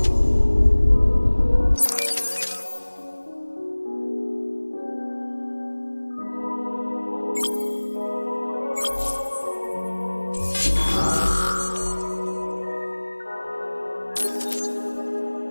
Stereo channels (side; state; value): both; inverted; correlation -1.00